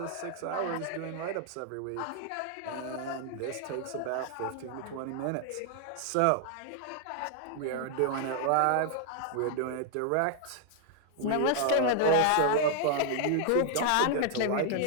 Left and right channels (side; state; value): both; different; correlation 0.00